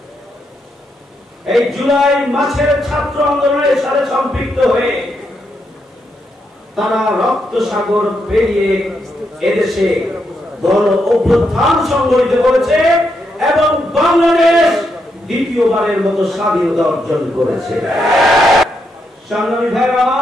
এই জুলাই মাসের ছাত্র আন্দোলনের সাথে সম্পৃক্ত হয়ে তারা রক্ত সাগর পেরিয়ে এদেশে গণ অভ্যুত্থান সংগঠিত করেছে এবং বাংলাদেশ দ্বিতীয়বারের মতো স্বাধীনতা অর্জন করেছে। সংগ্রামী ভাইরা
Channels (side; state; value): both; normal; correlation 0.81